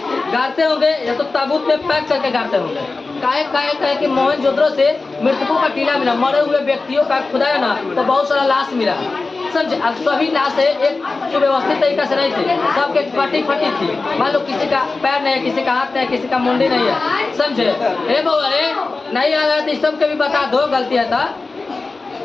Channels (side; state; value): right; quieter; 3.7 dB